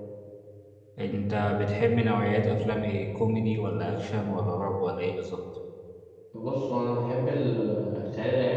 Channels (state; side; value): identical; both; correlation 1.00